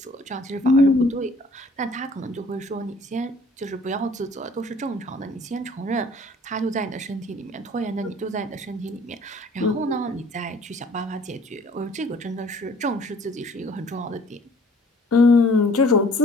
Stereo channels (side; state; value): both; normal; correlation 0.54